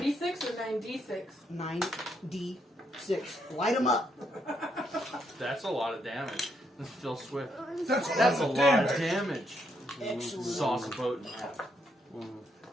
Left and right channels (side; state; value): both; normal; correlation 0.76